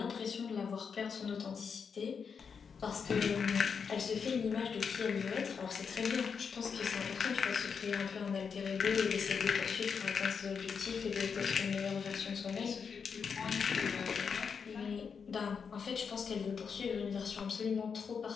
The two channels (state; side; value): quieter; right; 6.2 dB